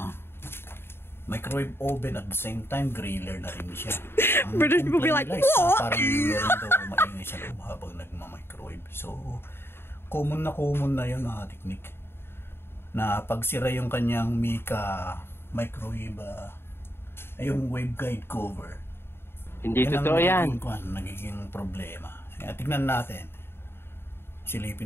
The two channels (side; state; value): right; late; 0.11 ms